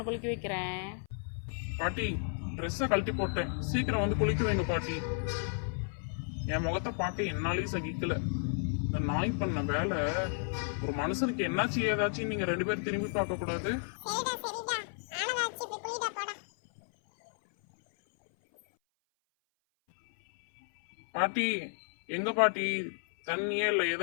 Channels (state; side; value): silent; right; 56 dB below the other